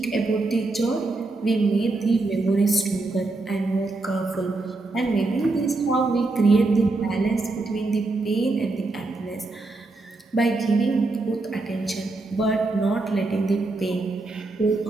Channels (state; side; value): quieter; left; 3.3 dB